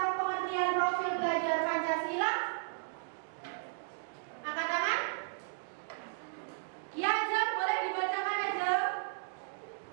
pengertian profil belajar Pancasila? Angkat tangan. Ya, Ajeng, boleh dibacakan, Ajeng.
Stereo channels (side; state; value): left; silent; digital silence